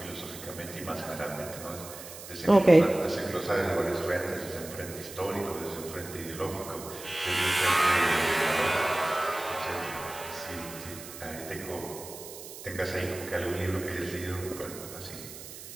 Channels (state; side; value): noise; right; hiss, 13 dB below the sound